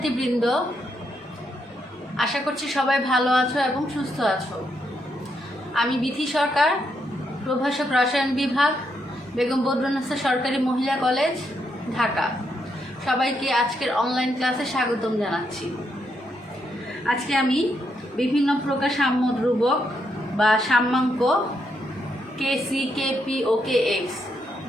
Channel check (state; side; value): normal; both; correlation 0.78